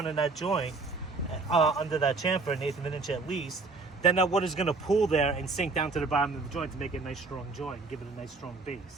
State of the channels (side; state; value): left; quieter; 3.9 dB